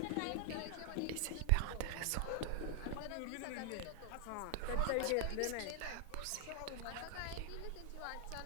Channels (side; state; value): both; different; correlation 0.00